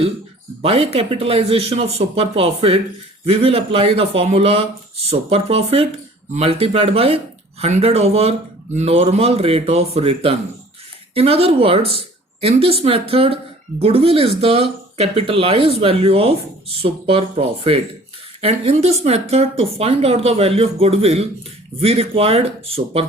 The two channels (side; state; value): both; normal; correlation 0.50